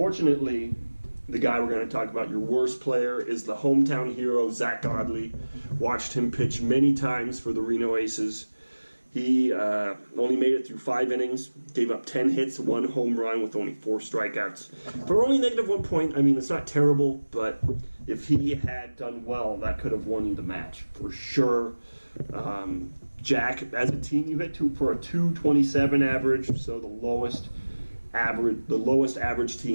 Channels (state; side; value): inverted; both; correlation -1.00